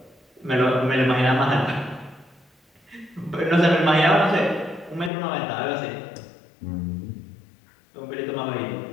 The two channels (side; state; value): right; drops out; at 5.1 s